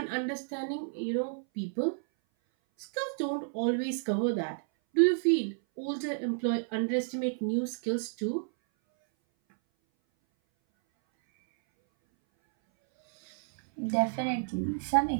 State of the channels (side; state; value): left; silent; 57 dB below the other